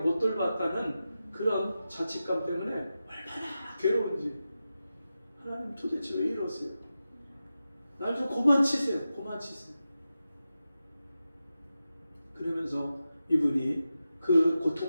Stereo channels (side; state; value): both; inverted; correlation -0.92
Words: 돌봤다는 그런 자책감 때문에 얼마나 괴로운지, 하나님 도대체 왜 이러세요? 날 좀 그만 치세요. 그러면서 이분이 그